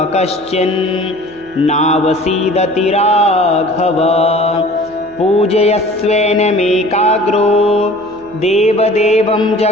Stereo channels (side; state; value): right; noise; hum, 26 dB below the sound